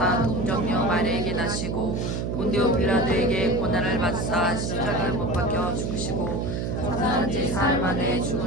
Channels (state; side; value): noise; right; hum, 2 dB below the sound